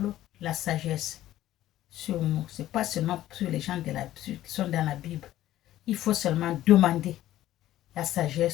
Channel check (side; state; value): right; quieter; 13.9 dB